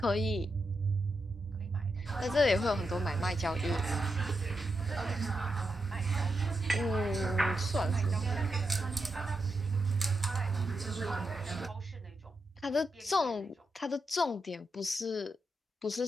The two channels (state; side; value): normal; both; correlation 0.86